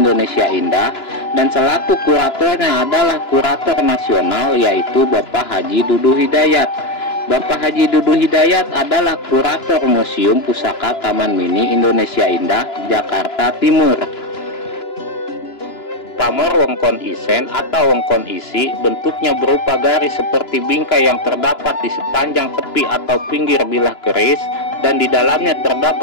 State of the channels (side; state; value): right; late; 2.9 ms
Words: Indah, dan selaku kuratornya adalah kurator nasional yaitu Bapak Haji Dudu Hidayat. Bapak Haji Dudu Hidayat adalah kurator Museum Pusaka Taman Mini Indonesia Indah, Jakarta Timur. Pamor Wongkon Isen atau Wongkon Isi bentuknya berupa garis seperti bingkai yang terdapat di sepanjang tepi atau pinggir bilah keris, dan di dalamnya